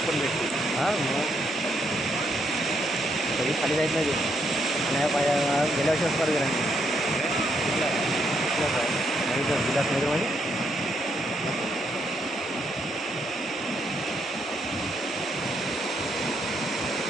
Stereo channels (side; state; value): both; normal; correlation 0.76